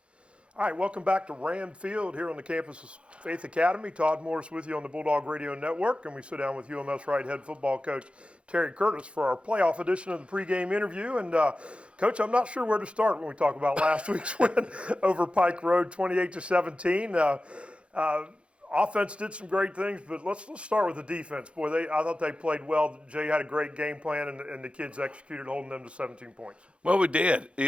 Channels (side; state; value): left; late; 0.059 ms